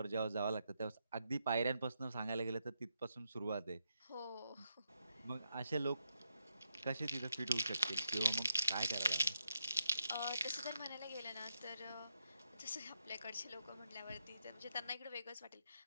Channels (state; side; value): inverted; both; correlation -0.81